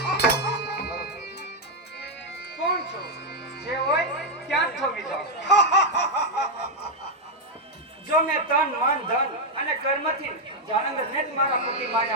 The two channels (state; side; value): normal; both; correlation 0.00